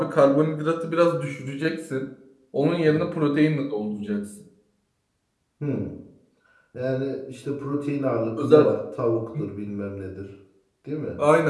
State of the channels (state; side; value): identical; both; correlation 1.00